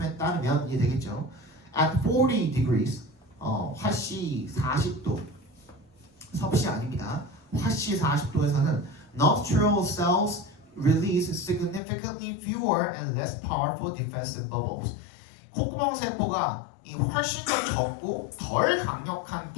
따르면 이게 되겠죠. At 40 degrees 화씨 40도 섭씨 아닙니다. 화씨 40도에서는 nostril cells release significantly fewer and less powerful defensive bubbles. 콧구멍 세포가 이 훨씬 더 적고 덜 강력한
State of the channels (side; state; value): right; drops out; at 11.8 s